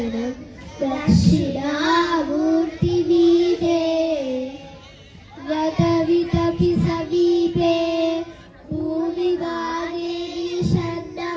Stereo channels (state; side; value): identical; both; correlation 1.00